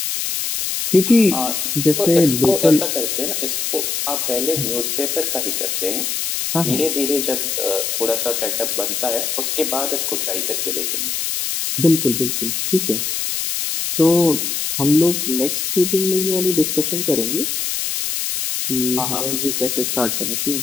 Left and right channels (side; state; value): left; noise; hiss, 1 dB below the sound